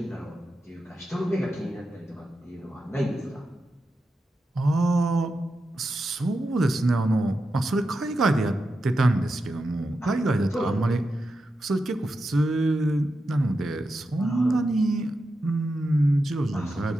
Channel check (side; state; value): both; normal; correlation 0.89